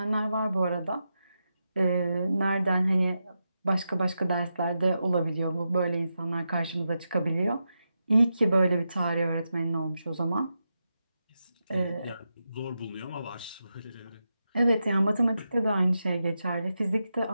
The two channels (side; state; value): both; inverted; correlation -0.88